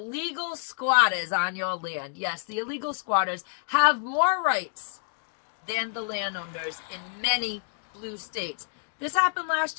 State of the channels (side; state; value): right; silent; digital silence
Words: squatters on your land. Yes, the illegal squatters have more rights than the landowners in many blue states. This happened